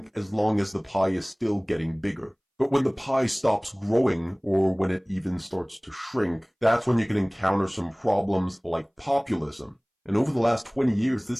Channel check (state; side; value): identical; both; correlation 1.00